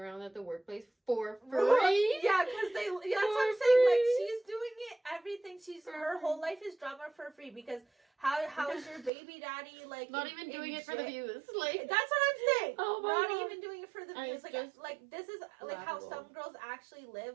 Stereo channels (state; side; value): drops out; left; at 9.1 s